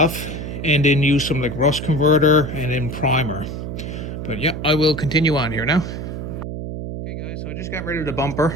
and then use some like rust converter and then primer. But yeah, I will continue on here now. Okay guys, so I just got rid of the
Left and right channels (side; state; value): right; noise; hum, 6 dB below the sound